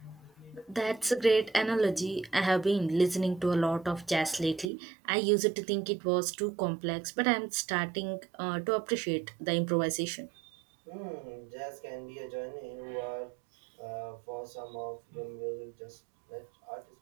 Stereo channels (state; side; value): drops out; left; at 4.7 s